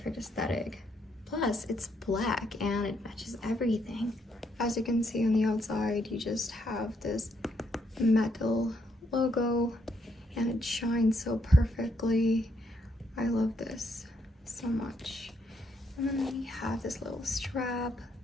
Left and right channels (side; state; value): both; normal; correlation 0.75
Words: aesthetic. Plus, it's black and it matches everything. As you can see on the outside, you just have this metal logo and it shines so perfectly. I love this so much. And then we have this little strap